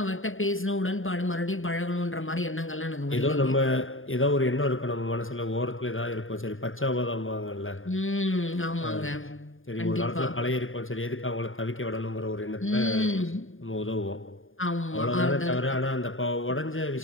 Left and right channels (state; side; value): late; right; 0.59 ms